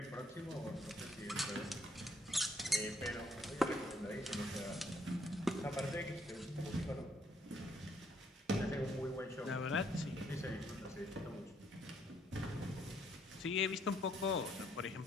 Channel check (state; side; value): normal; both; correlation 0.69